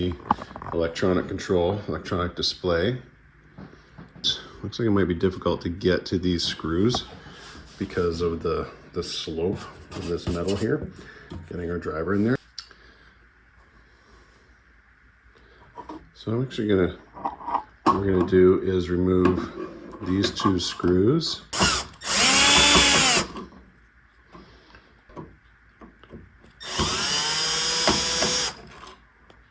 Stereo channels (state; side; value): identical; both; correlation 1.00